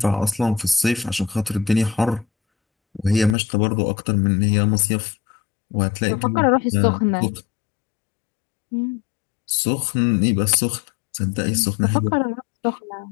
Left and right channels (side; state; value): right; drops out; at 3.4 s